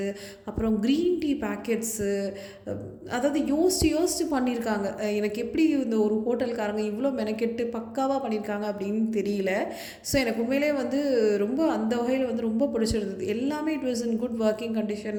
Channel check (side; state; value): both; identical; correlation 1.00